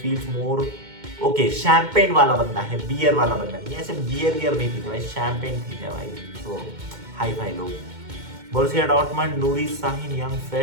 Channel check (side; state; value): left; late; 2.1 ms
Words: more okay. Champagne वाला बंदा है, बियर वाला बंदा नहीं, ऐसे बियर नहीं पीते भाई, शैंपेन पीते हैं भाई, तो हाई फाई लोग। Borussia Dortmund Noori Sahin young